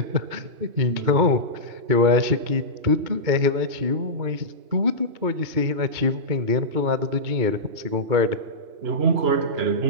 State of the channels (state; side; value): late; left; 2.3 ms